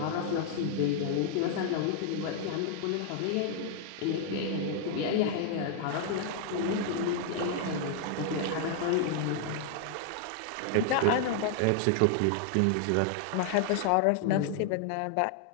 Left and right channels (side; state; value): both; different; correlation 0.00